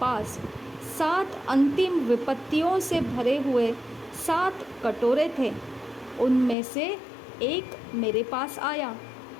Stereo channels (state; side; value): drops out; right; at 6.6 s